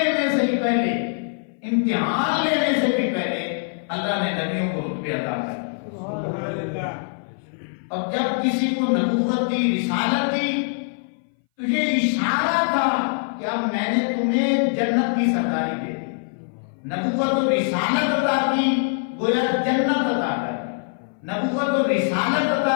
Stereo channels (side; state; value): right; silent; 60 dB below the other